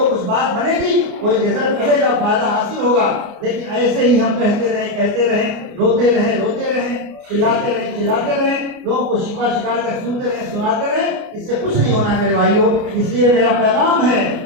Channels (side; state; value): left; late; 29 ms